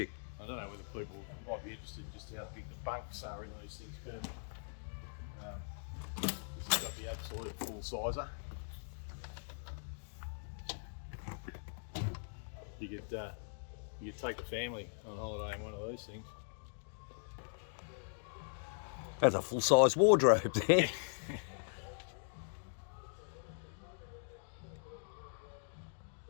I don't know whether people might be interested just how big the bunks are in these things, but this has got the absolute full sizer. You could take a family on holiday in one of these things. That's a full-size wardrobe there.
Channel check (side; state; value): right; silent; digital silence